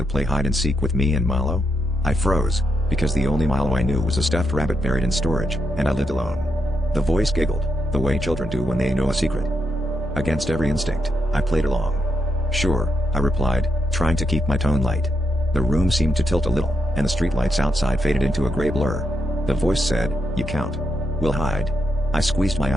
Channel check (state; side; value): normal; both; correlation 0.82